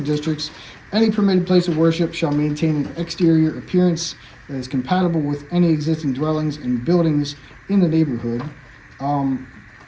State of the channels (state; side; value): identical; both; correlation 1.00